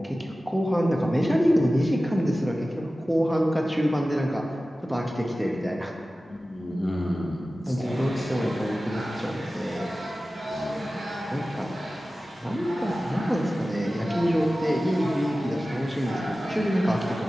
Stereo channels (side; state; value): both; normal; correlation 0.96